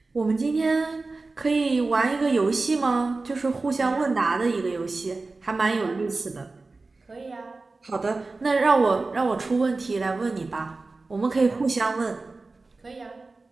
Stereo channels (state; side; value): quieter; left; 3.6 dB